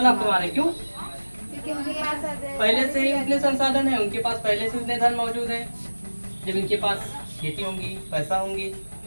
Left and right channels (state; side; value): inverted; both; correlation -1.00